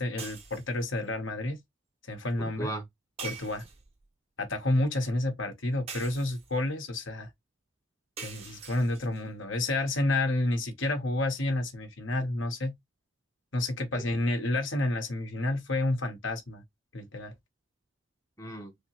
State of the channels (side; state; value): both; normal; correlation 0.68